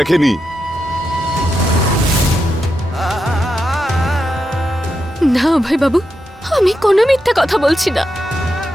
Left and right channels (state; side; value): normal; both; correlation 0.86